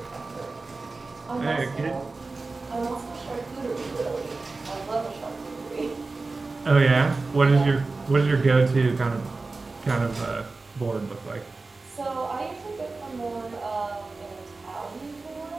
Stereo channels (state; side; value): quieter; left; 3.7 dB